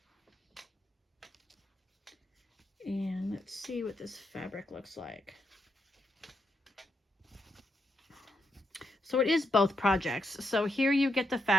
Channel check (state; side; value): normal; both; correlation 0.81